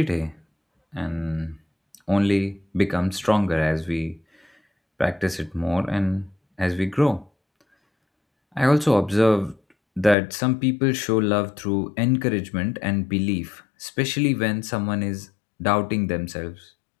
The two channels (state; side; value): drops out; right; at 10.2 s